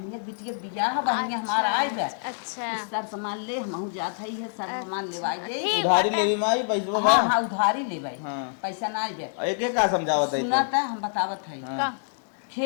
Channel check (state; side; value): silent; right; 61 dB below the other